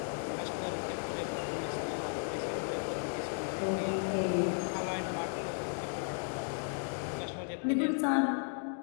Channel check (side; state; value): right; silent; 55 dB below the other